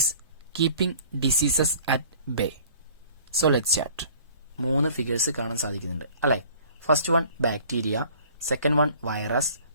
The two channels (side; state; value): both; inverted; correlation -0.51